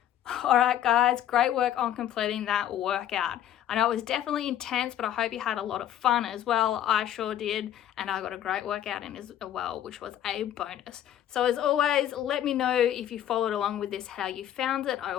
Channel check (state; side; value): quieter; right; 11.3 dB